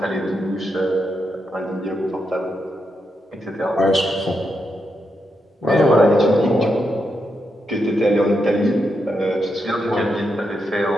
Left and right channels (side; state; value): both; normal; correlation 0.84